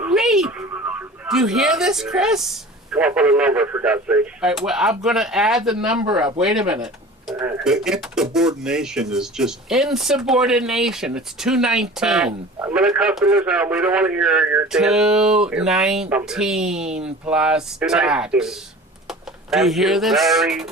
Do you hear this, Chris? Come up with a number, for God's sake. All right, well, I'm going to add the number up. Wait a minute. The insubordination is just... Insubordination. It's $219. I'm going to customers now. We don't want to hear your $219 plus tax. Do you hear this? Very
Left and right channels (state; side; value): normal; both; correlation 0.40